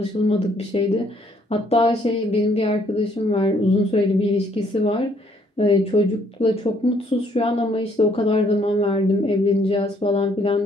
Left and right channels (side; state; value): both; normal; correlation 0.66